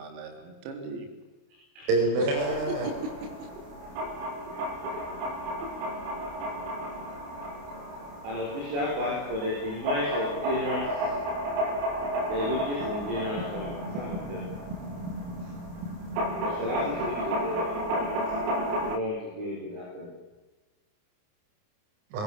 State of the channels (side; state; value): left; late; 29 ms